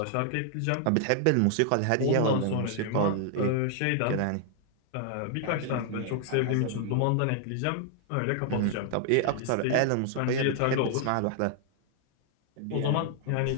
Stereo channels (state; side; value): different; both; correlation 0.00